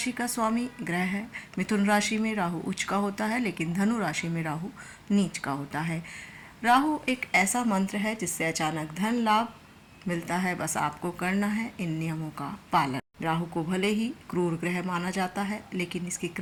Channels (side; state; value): both; identical; correlation 1.00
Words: का स्वामी ग्रह है। मिथुन राशि में राहु उच्च का होता है, लेकिन धनु राशि में राहु नीच का होता है। राहु एक ऐसा मंत्र है जिससे अचानक धन लाभ मिलता है। बस आपको करना है इन नियमों का पालन। राहु को भले ही क्रूर ग्रह माना जाता है, लेकिन इसकी